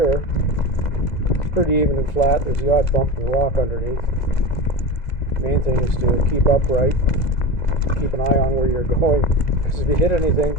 It's pretty even and flat. There's the odd bump and rock underneath. Main thing is to keep upright, keep an eye on where you're going, because if you hit anything,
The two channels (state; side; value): late; right; 2.0 ms